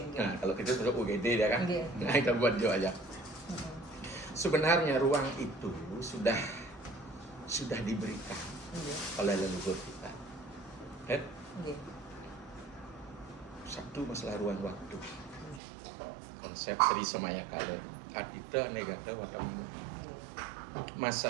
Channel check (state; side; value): drops out; left; at 15.6 s